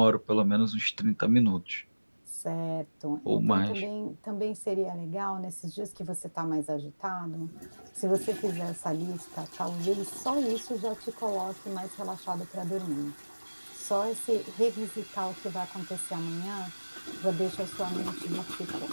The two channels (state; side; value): inverted; both; correlation -1.00